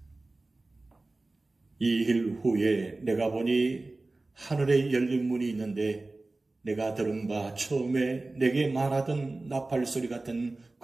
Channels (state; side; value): quieter; left; 3.1 dB